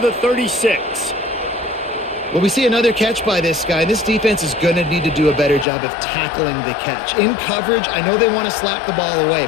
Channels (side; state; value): right; drops out; at 5.7 s